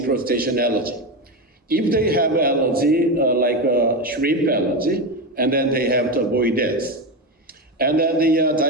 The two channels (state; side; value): normal; both; correlation 0.16